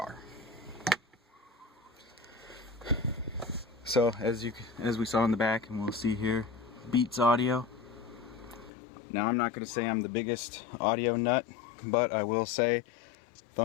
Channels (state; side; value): drops out; right; at 8.7 s